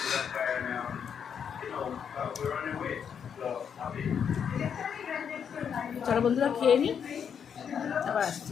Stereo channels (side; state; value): right; quieter; 7.6 dB